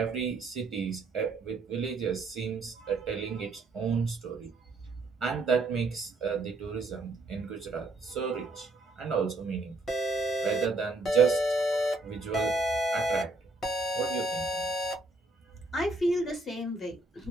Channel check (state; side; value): quieter; left; 3.2 dB